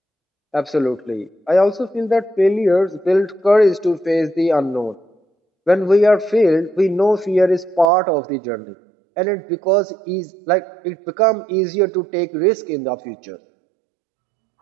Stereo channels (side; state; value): left; drops out; at 7.9 s